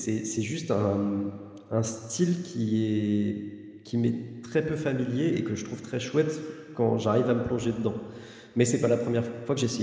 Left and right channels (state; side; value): identical; both; correlation 1.00